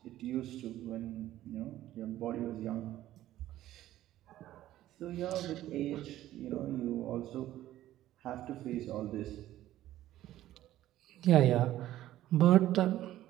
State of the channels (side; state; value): left; quieter; 13.9 dB